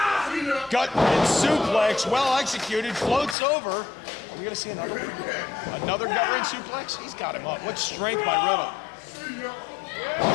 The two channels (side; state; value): right; drops out; at 3.4 s